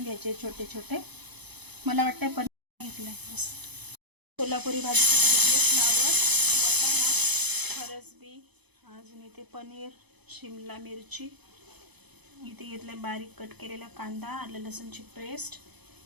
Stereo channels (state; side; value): late; left; 0.99 ms